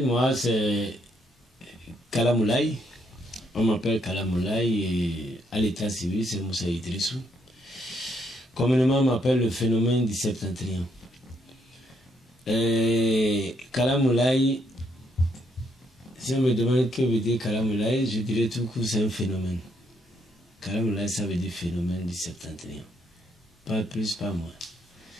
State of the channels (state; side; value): normal; both; correlation 0.73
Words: moi c'est Kalamoulaye. On m'appelle Kalamoulaye et à l'état civil c'est Moussa Idrissou. Communément on m'appelle le phénomène du septentrion. Kalamoulaye, si on me demande que veut dire Kalamoulaye, je dirais tout court c'est un phénomène. Kalamoulaye ça veut dire phénomène du septentrion. Pas plus, pas moins.